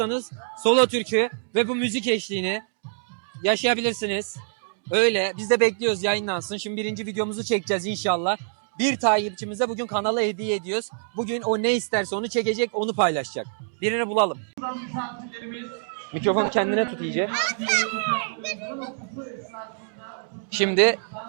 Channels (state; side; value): silent; left; digital silence